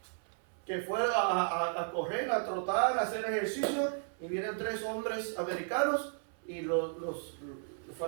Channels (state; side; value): silent; left; 55 dB below the other